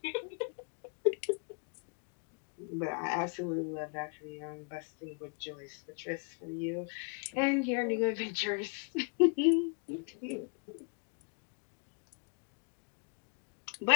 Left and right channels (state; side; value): quieter; right; 39.1 dB